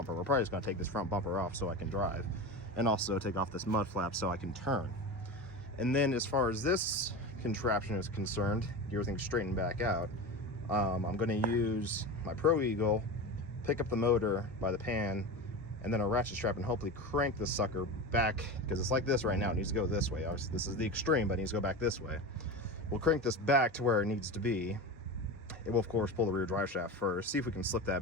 We're probably just gonna take this front bumper off so I can drive, and also take off this mud flap so I can turn. And then as far as this contraption is concerned, get everything straightened back out, I'm gonna use my Pro Eagle, pick up the motor by the pan, and then a ratchet strap and hopefully crank this sucker back, because it's like this right now. It needs to go this way. Obviously, this is the extreme, but it needs to go back this way. We'll crank this back to where it needs to be. It will, of course, pull the rear drive shaft first, see if we can slip that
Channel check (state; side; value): normal; both; correlation 0.26